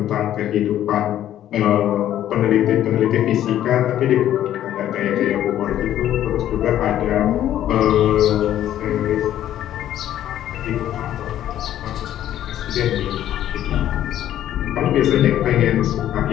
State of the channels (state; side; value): quieter; right; 11.8 dB